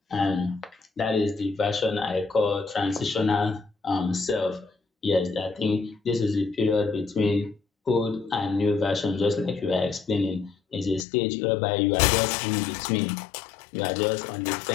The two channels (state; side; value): drops out; right; at 11.1 s